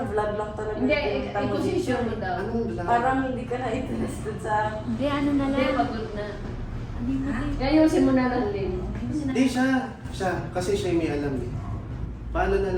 vlog lang talaga. Hindi, yung pinunta mo i-position dito. mo daw. Anong vlog? Parang hindi ka na interested sa... Hindi, ano na Hindi, lang. pagod na. Hindi mo din. Ayusin mo na lang din. Hindi siya. Siya. Kasi siya yung may alam eh. Paano na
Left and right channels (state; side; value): identical; both; correlation 1.00